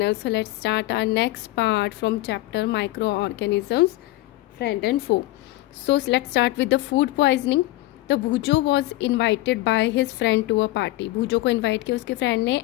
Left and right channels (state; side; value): quieter; right; 17.9 dB